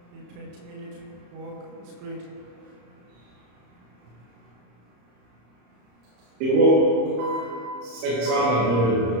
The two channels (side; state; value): left; late; 34 ms